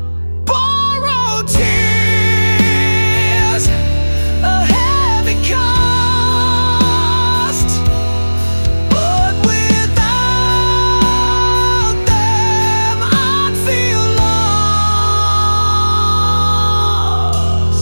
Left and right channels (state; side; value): inverted; both; correlation -1.00